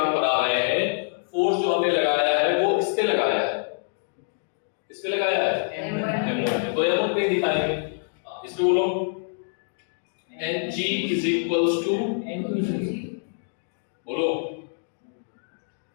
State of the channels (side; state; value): right; silent; digital silence